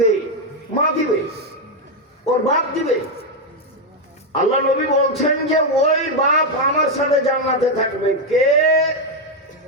মা দিবে, ওর বাপ দিবে। আল্লাহ নবী বলছেন যে ওই বাপ আমার সাথে জান্নাতে থাকবে। কে?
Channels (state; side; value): normal; both; correlation 0.04